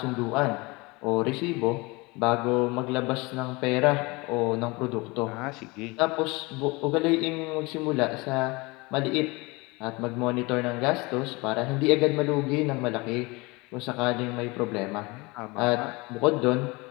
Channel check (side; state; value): right; quieter; 25.0 dB